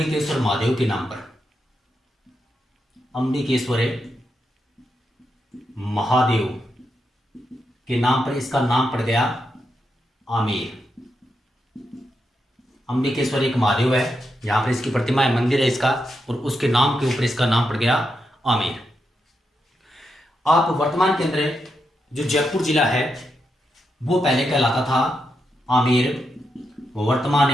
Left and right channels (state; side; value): normal; both; correlation 0.84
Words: महादेव के नाम पर। अंबिकेश्वर महादेव के नाम पर इसका नाम पड़ गया आमेर। अंबिकेश्वर एक महादेव है, यहां पर इसकी प्रतिमा है, मंदिर है इसका, और उसके नाम के ऊपर इसका नाम पड़ गया आमेर। आप वर्तमान के अंदर जो जयपुर जिला है वो पहले कहलाता था आमेर, वर्तमान